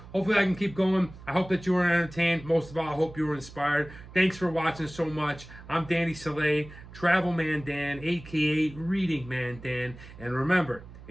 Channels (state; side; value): noise; right; hum, 17 dB below the sound